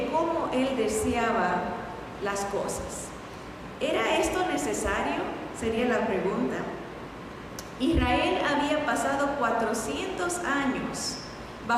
cómo Él deseaba las cosas. ¿Era esto necesario? Sería la pregunta. Israel había pasado 400 años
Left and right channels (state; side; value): identical; both; correlation 1.00